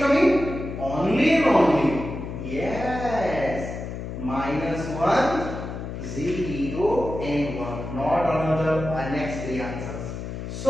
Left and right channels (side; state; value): left; noise; hum, 7 dB below the sound